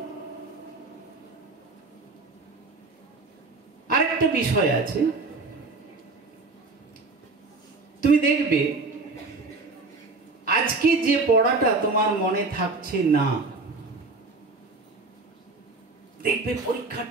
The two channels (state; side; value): quieter; left; 3.7 dB